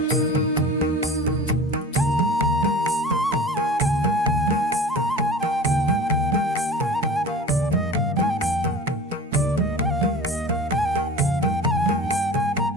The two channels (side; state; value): both; normal; correlation 0.38